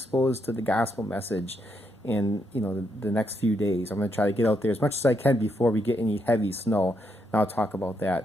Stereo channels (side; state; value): both; normal; correlation 0.78